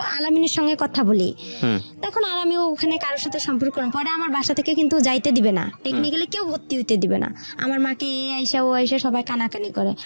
আলামিনের সঙ্গে কথা বলি, তখন আর আমি ওখানে কারোর সাথে সম্পর্ক করব। পরে আমার বাসা থেকে কিন্তু যাইতে দিবে না, টেকনিক্যালি কেউ ভর্তি হইতে দিবে না। আমার মাকে এ আইসা ও আইসা সবাই কানাকানি করে,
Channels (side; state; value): both; inverted; correlation -1.00